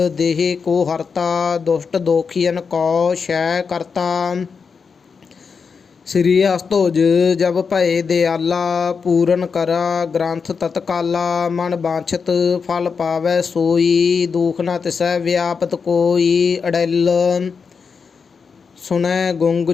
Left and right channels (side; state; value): right; quieter; 5.6 dB